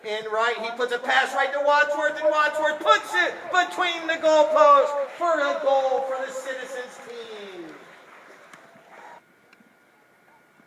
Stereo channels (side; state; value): both; identical; correlation 1.00